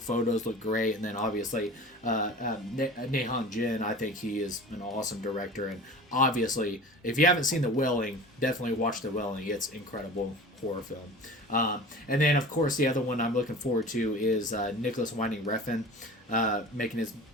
look great, and then obviously Na Hong Jin, I think he is an awesome director, and obviously if you haven't seen the Welling, definitely watch the Welling. It's incredible horror film. And then of course the other one I'm looking forward to is Nicholas Winding Refn making his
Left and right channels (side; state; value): both; normal; correlation 0.38